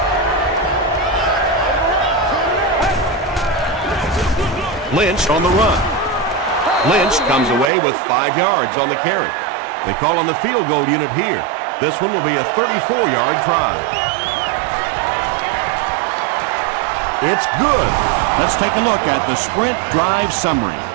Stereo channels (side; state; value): left; drops out; at 7.7 s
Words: Lynch on the run. Lynch comes away with 5 yards on the carry. They call on the field goal unit here. This one will be a 34-yard try. It's good. Let's take a look at the sprint drive summary.